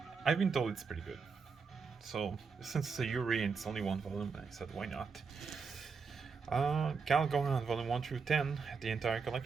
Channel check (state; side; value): quieter; left; 5.3 dB